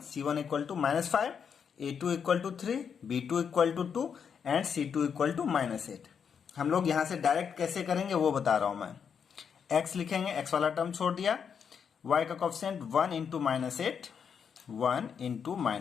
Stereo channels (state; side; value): quieter; right; 7.0 dB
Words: c1 equal to -5, a2 equal to 3, b2 equal to 2 and c2 equal to -8। हम लोग यहां से डायरेक्ट कैसे करेंगे वो बता रहा हूं मैं। x लिखेंगे, x वाला टर्म छोड़ दिया, y का कोएफिशिएंट 1 इंटू -8, 1 इंटू